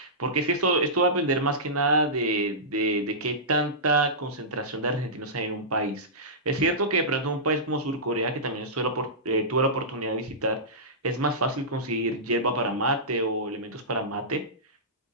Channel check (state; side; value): normal; both; correlation -0.17